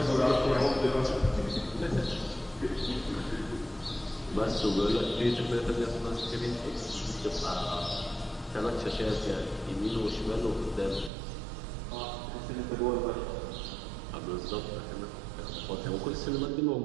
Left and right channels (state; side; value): drops out; left; at 11.1 s